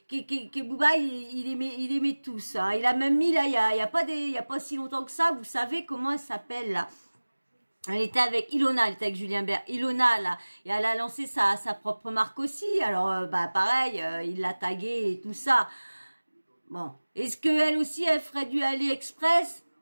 Booba, il aimait tous. Hein. Il a même mis, là, il y a pas si longtemps que ça, vous savez comment elle s'appelle, là. Elle était avec Ilona, elle était avec Julien Bert. Ilona, là, et elle a lancé sa propre marque aussi. Alors, bah, pareil, il l'a taguée et tout ça. Bon. Est-ce qu'elle aussi, elle ferait du AliExpress?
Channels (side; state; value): both; inverted; correlation -1.00